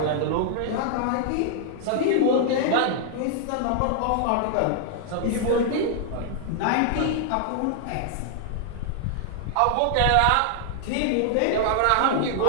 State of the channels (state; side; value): different; both; correlation 0.00